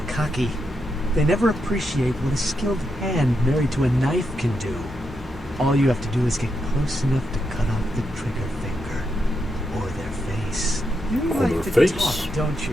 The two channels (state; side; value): normal; both; correlation 0.83